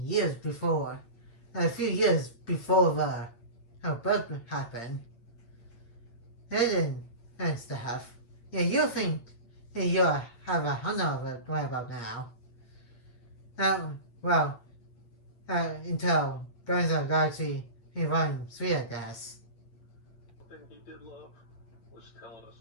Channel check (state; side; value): late; right; 8.5 ms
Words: years before, a few years before her birth happened. And stuff. Yeah, you think you have a hundred of it right about now. Until Guardians of the Galaxy in Volume 3, I guess. The thing he did love was telling us